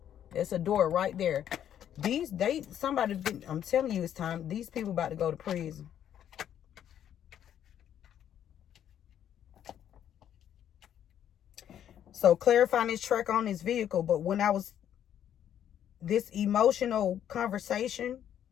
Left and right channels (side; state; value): right; quieter; 10.1 dB